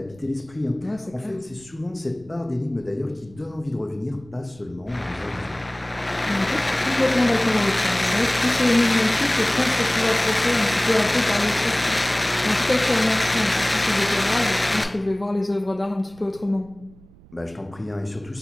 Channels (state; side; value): noise; right; rumble, 24 dB below the sound